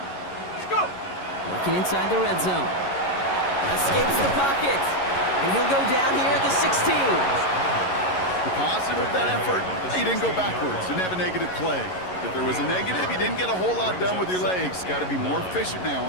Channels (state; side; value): late; right; 11 ms